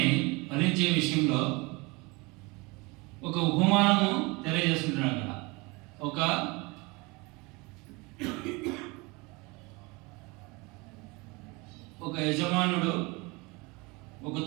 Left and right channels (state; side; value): quieter; left; 26.0 dB